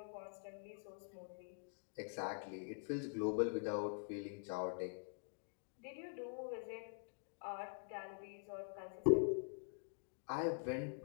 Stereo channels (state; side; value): silent; right; digital silence